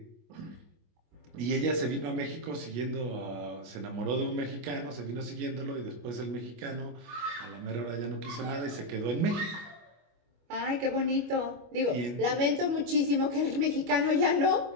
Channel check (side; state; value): left; late; 25 ms